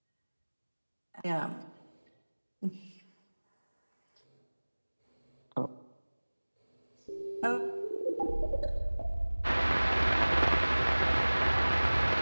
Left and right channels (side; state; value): both; inverted; correlation -1.00